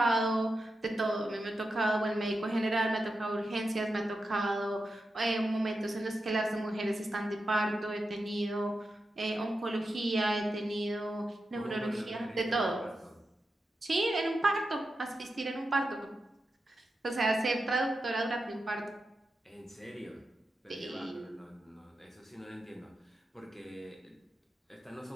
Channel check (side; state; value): both; normal; correlation 0.89